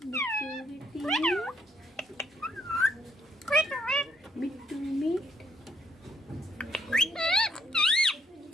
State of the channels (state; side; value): normal; both; correlation 0.71